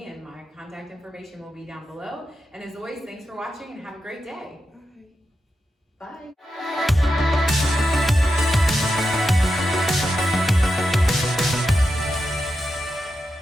and my contact information will be down below. And as always, thanks for watching and have a great day. Bye. Bye.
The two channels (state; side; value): normal; both; correlation 0.88